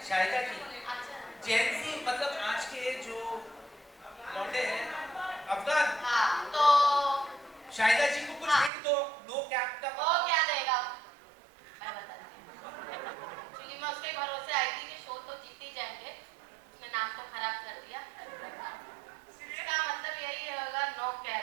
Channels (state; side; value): drops out; left; at 8.7 s